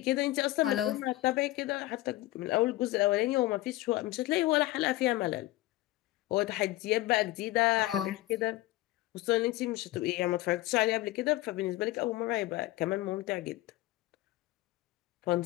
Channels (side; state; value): right; quieter; 17.5 dB